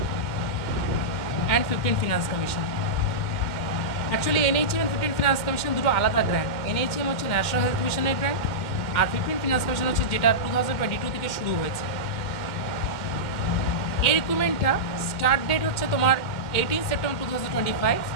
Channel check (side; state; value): right; late; 2.1 ms